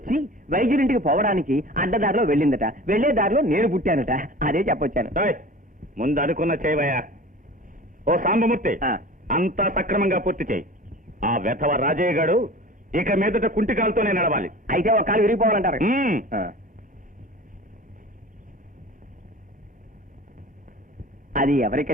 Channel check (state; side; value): normal; both; correlation 0.39